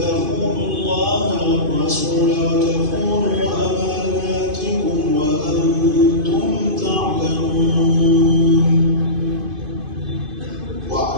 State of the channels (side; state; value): left; late; 2.5 ms